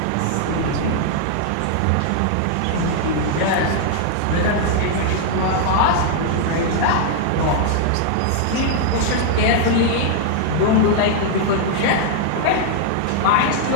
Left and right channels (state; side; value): different; both; correlation 0.00